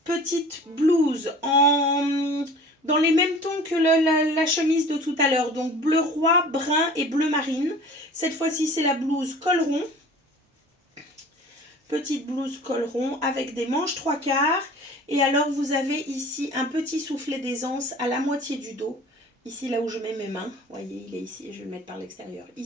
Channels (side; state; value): both; normal; correlation 0.44